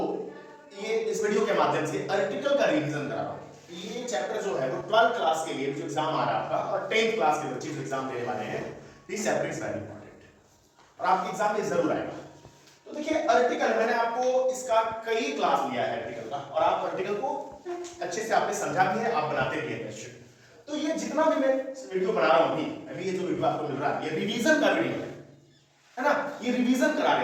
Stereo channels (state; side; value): identical; both; correlation 1.00